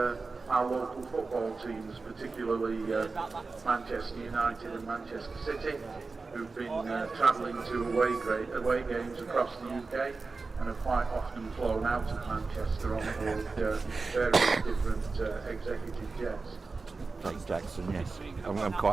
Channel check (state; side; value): quieter; left; 4.0 dB